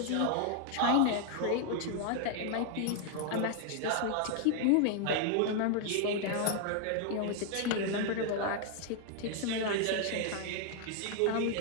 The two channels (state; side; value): different; both; correlation 0.00